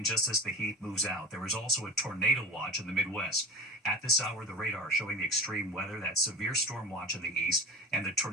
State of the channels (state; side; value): normal; both; correlation 0.32